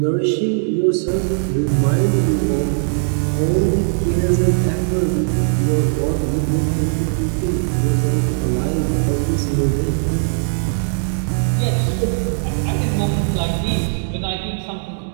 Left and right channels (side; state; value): left; silent; digital silence